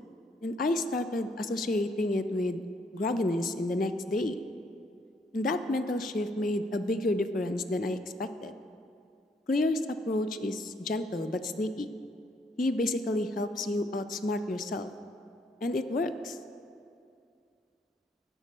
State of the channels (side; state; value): both; normal; correlation 0.69